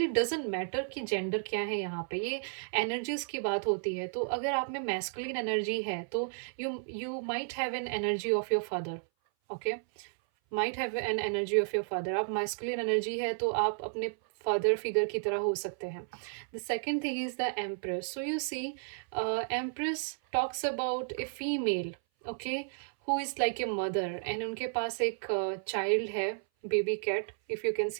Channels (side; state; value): left; silent; 56 dB below the other